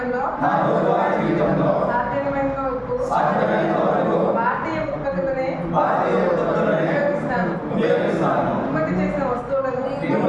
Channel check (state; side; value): identical; both; correlation 1.00